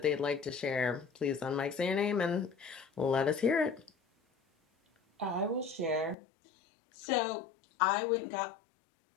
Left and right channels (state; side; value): drops out; right; at 6.2 s